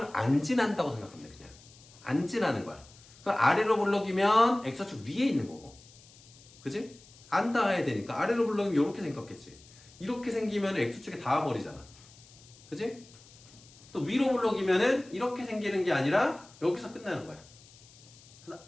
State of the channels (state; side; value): noise; left; hiss, 24 dB below the sound